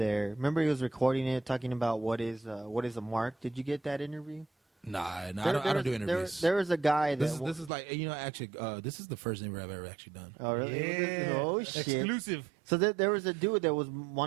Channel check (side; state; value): left; drops out; at 7.7 s